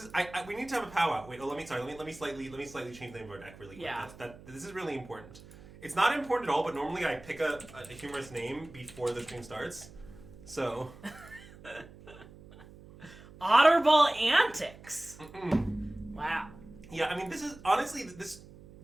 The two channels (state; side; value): noise; right; hum, 19 dB below the sound